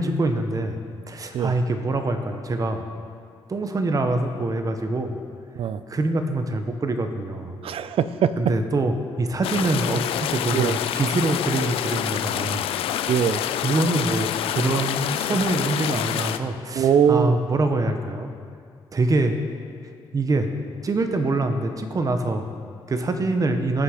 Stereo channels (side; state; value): both; normal; correlation 0.65